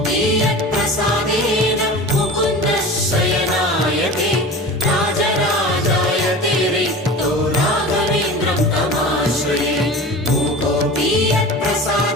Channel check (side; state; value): both; normal; correlation 0.35